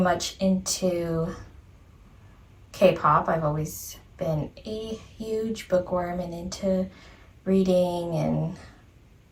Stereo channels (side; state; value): both; identical; correlation 1.00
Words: into K-pop. I've always been a huge bookworm and into reading and